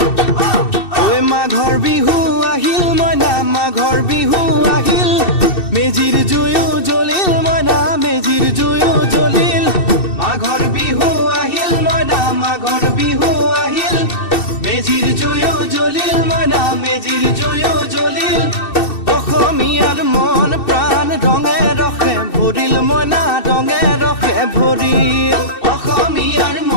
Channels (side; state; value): right; late; 2.7 ms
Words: ঐ মাঘৰ বিহু আহিল মইনা মাঘৰ বিহু আহিল মেজিৰ জুয়ো জ্বলিল মইনা মেজিৰ জুয়ো জ্বলিল মাঘৰ বিহু আহিল মইনা মাঘৰ বিহু আহিল মেজিৰ জুয়ো জ্বলিল মইনা মেজিৰ জুয়ো জ্বলিল অসমীয়াৰ মন প্ৰাণ ৰঙে ৰসে ভৰিল মইনা ৰঙে ৰসে ভৰিল অসমীয়াৰ